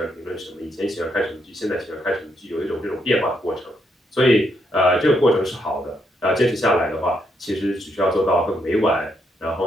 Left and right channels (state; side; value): normal; both; correlation 0.77